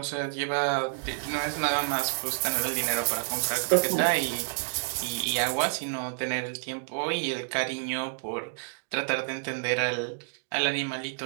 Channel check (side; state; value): left; silent; digital silence